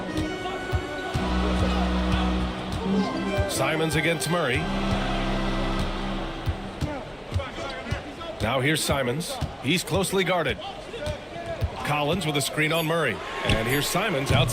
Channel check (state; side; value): identical; both; correlation 1.00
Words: Simons against Murray. Now here's Simons. He's closely guarded. Collins with a screen on Murray. And here's Simons